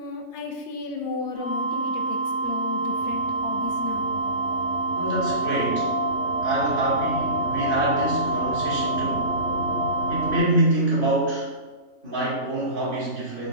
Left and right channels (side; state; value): right; late; 3.2 ms